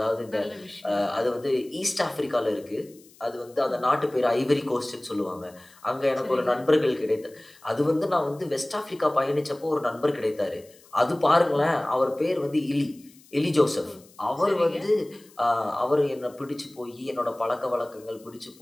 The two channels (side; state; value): left; noise; hiss, 26 dB below the sound